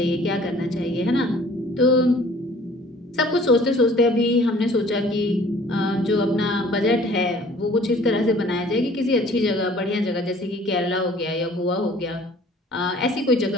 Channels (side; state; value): both; normal; correlation 0.53